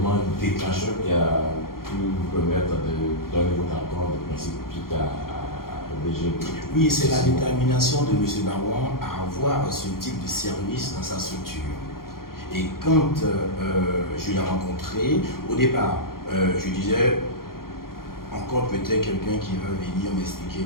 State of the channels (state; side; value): late; right; 0.92 ms